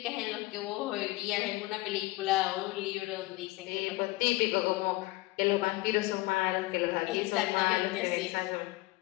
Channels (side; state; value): right; quieter; 20.6 dB